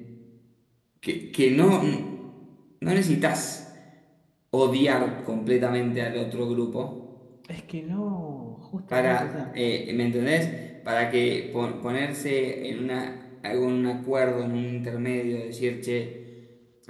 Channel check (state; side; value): identical; both; correlation 1.00